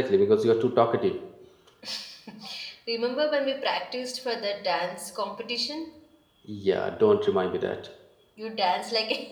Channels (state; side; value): identical; both; correlation 1.00